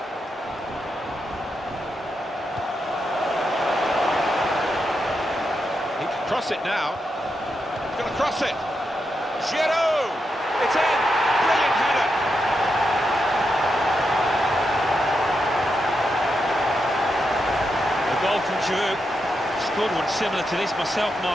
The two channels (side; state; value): both; normal; correlation 0.85